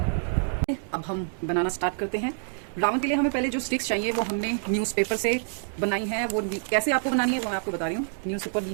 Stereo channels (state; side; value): silent; left; digital silence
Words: अब हम बनाना स्टार्ट करते हैं। रावण के लिए हमें पहले जो स्टिक्स चाहिए वो हमने न्यूज़पेपर से बनाई है। वो कैसे आपको बनानी है वो मैं आपको बता रही हूँ। न्यूज़पेपर